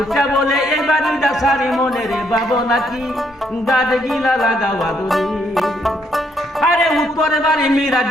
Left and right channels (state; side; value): normal; both; correlation 0.72